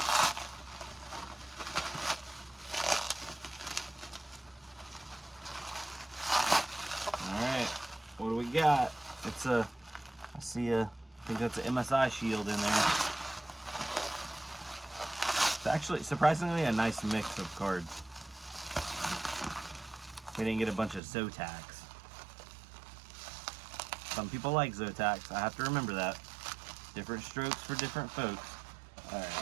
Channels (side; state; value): left; drops out; at 21.0 s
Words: Alright, what do we got? It's a, I think that's an MSI shield in there. It's actually surprisingly a nice mix of cards. We didn't get a bunch of Zotacs. Some people like Zotacs, I have to remember that. Different strokes for different folks.